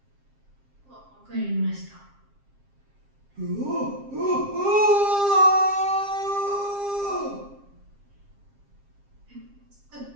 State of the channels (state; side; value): late; left; 7.5 ms